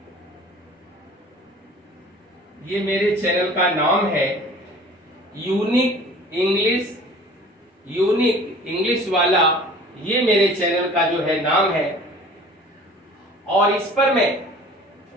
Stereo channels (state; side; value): normal; both; correlation 0.46